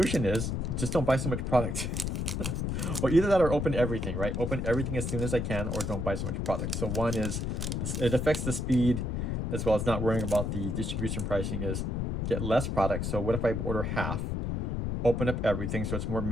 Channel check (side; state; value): left; noise; rumble, 1 dB below the sound